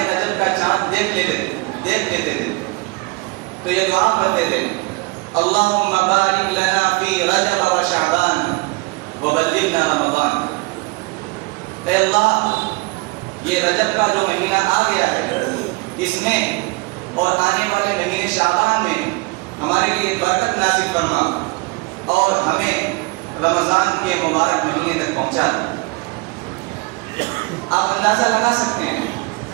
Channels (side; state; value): left; quieter; 26.3 dB